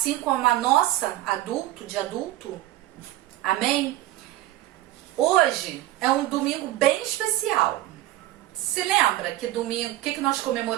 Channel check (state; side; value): quieter; left; 15.5 dB